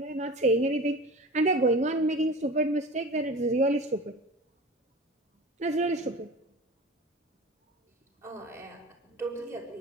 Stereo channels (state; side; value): normal; both; correlation 0.35